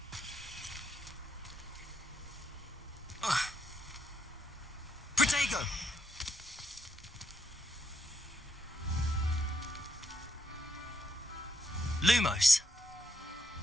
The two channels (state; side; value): normal; both; correlation 0.79